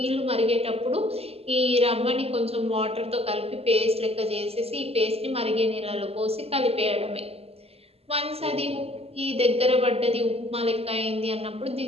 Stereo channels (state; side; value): late; left; 0.29 ms